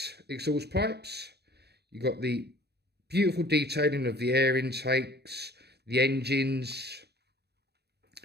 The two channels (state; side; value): late; left; 0.48 ms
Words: exhaust pipes. You've got the beautiful detailing of the air intakes, the engines.